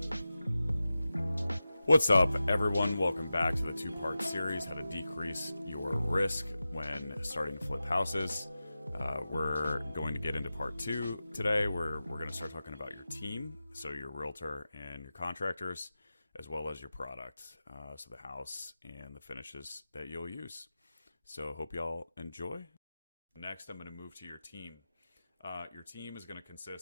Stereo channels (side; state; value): both; inverted; correlation -0.94